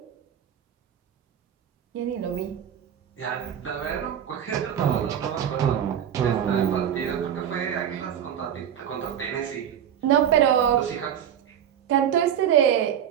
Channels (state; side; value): quieter; left; 9.4 dB